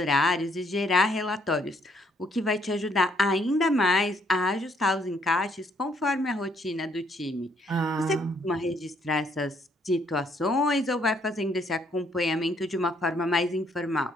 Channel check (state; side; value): normal; both; correlation 0.68